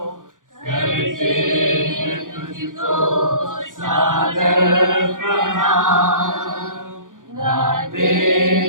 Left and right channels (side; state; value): left; late; 0.88 ms